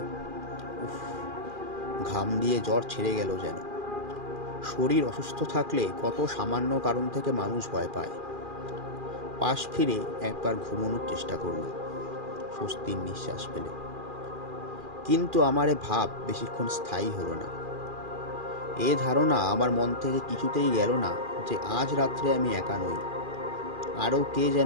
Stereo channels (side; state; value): left; late; 2.4 ms